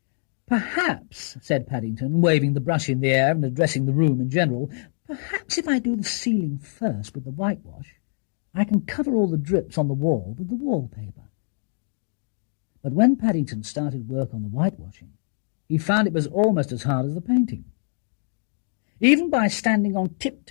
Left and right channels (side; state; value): right; silent; digital silence